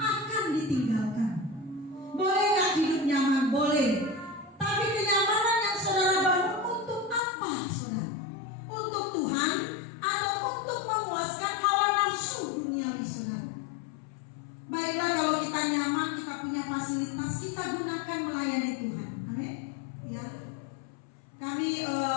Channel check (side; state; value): right; drops out; at 7.2 s